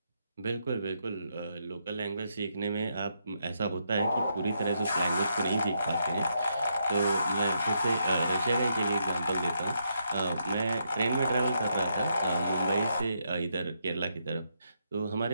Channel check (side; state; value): both; inverted; correlation -0.78